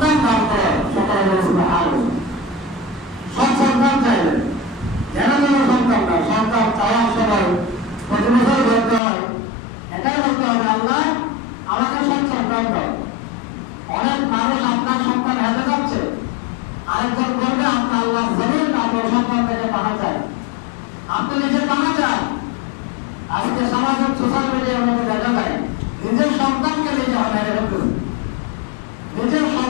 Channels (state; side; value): drops out; right; at 9.0 s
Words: দান করেন। সকলে সৎ সন্তান চাইলেন, যেন কোনো সন্তান না, সন্তান চাওয়ার সময় প্রতি বছর বলতে হয় এটাই বলতে হবে আল্লাহ আমাকে সৎ সন্তান দাও। অনেক মানুষ আপনার সন্তান হেঁটে যাচ্ছে, আরেকজন বলবে আপনার আল্লাহ জমিন তারপর সন্তান থেকে বানা যায়, আপনি নিজে বানা যায়। আজকে সামাজিক সোশ্যাল মিডিয়ার মধ্যে দেখা যায় নিজের সন্তানকে নিজে হটাই রেখেছে, নিজের